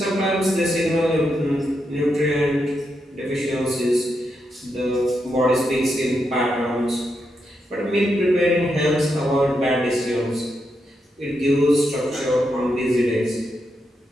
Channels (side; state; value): both; normal; correlation 0.83